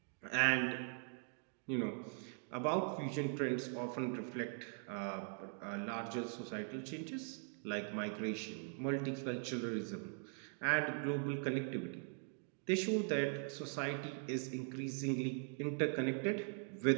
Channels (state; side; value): silent; left; 50 dB below the other